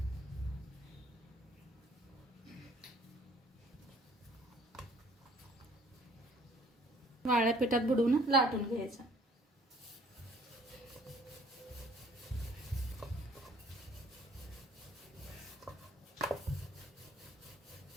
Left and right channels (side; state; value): both; normal; correlation 0.58